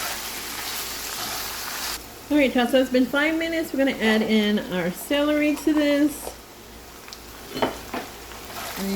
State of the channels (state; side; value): identical; both; correlation 1.00